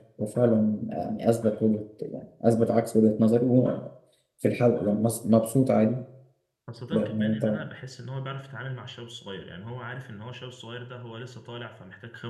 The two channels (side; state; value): both; identical; correlation 1.00